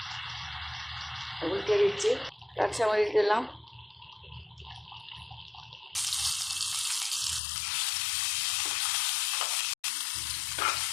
উল্টে দিচ্ছি। কাঁচামরিচ দিলাম,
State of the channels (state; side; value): drops out; right; at 7.4 s